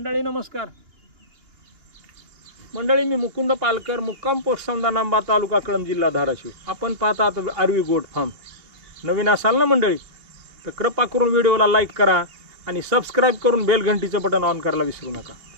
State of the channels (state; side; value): late; left; 2.8 ms